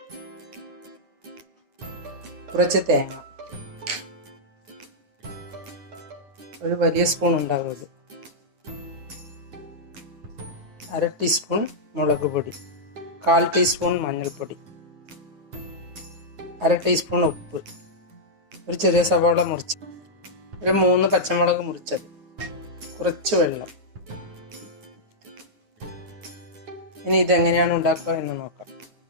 കുറച്ച് തേങ്ങ, ഒരു വലിയ സ്പൂൺ ഉണ്ടാകും ഇത്, 1/2 ടീസ്പൂൺ മുളക് പൊടി, 1/4 ടീസ്പൂൺ മഞ്ഞൾപ്പൊടി, 1/2 ടീസ്പൂൺ ഉപ്പ്, ഒരു ചെറിയ സവാള മുറിച്ച്, ഒരു 3 പച്ചമുളക് മുറിച്ചത്, കുറച്ച് വെള്ളം. ഇനി ഇതെങ്ങനെയാണ് ഉണ്ടാക്കുക എന്ന് നോക്കാം.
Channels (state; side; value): late; left; 9.7 ms